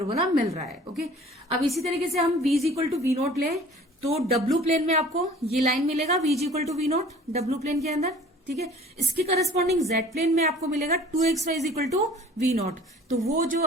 मिल रहा है, ओके। अब इसी तरीके से हम v is equal to v naught ले, तो W प्लेन में आपको ये लाइन मिलेगा v is equal to v naught W plane के अंदर, ठीक है। इसके करस्पॉन्डिंग Z प्लेन में आपको मिलेगा 2xy is equal to v naught. तो वो जो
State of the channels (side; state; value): both; normal; correlation 0.48